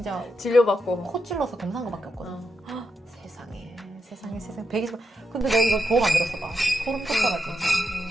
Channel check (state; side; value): normal; both; correlation 0.84